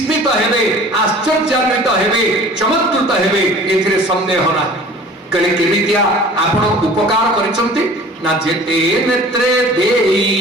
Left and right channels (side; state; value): both; normal; correlation 0.46